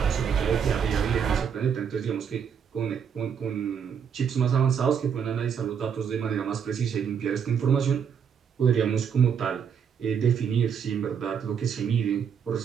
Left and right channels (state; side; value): quieter; left; 7.4 dB